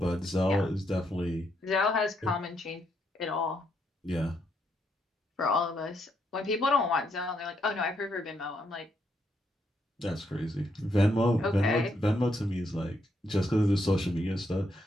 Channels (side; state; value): both; normal; correlation 0.77